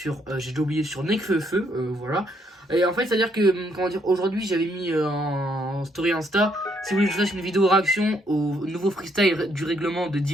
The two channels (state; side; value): normal; both; correlation 0.71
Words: j'ai déjà oublié, sur Nekfeu, voilà. Et en fait, c'est-à-dire que, comment dire, aujourd'hui j'avais mis en story Insta, si vous voulez que je fasse une vidéo réaction au nouveau freestyle du règlement de